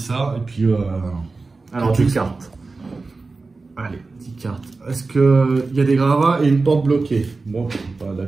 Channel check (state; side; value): quieter; left; 3.8 dB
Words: et puis... Alors, 10 cartes. Allez, 10 cartes. Est-ce qu'il y a des gravats et une porte bloquée? Bon, la